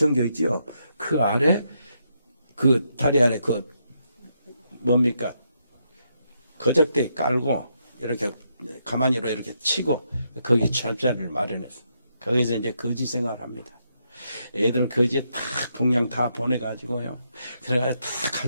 있지요. 그 아래 그 다리 아래 그 뭡니까 거적대 깔고 이렇게 가만히로 이렇게 치고 거기 철자리를 마련했어. 거기서 이제 거지 생활을 합니다. 애들 거지에 다 분량 다 보내가지고요. 그래가지고 다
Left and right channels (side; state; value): both; inverted; correlation -0.79